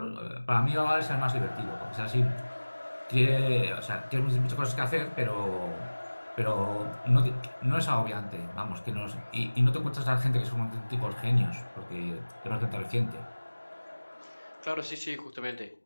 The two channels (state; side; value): inverted; both; correlation -1.00